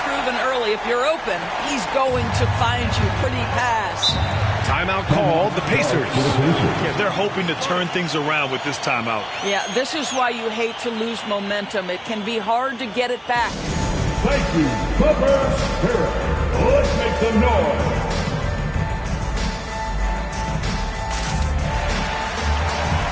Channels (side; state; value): both; identical; correlation 1.00